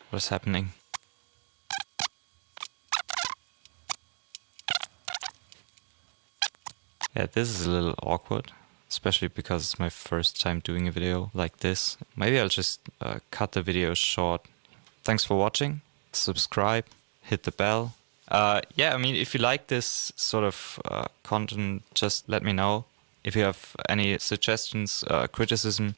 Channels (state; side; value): silent; left; digital silence